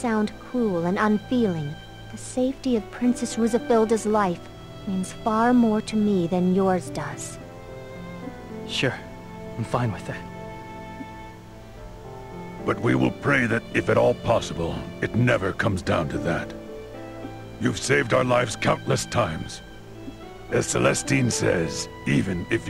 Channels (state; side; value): identical; both; correlation 1.00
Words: cruel and unfeeling. The safety of Princess Rusafilda's life means far more to me than yours does. Sure, I'm fine with that. But we will pray that, if at all possible, it never comes down to that. You've saved our lives countless times. As Celestine says, even if